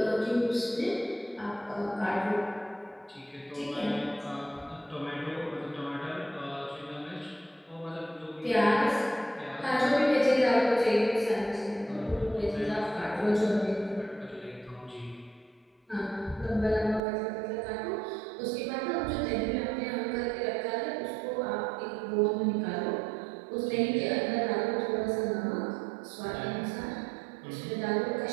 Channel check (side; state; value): left; drops out; at 17.0 s